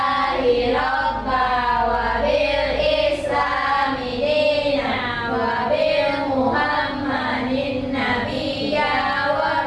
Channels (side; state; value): both; identical; correlation 1.00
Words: robba wa bil islami dina wa bil muhammadin nabiyya wa